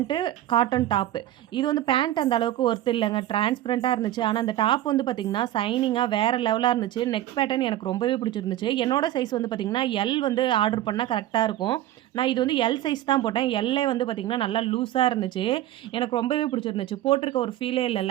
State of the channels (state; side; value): quieter; left; 13.5 dB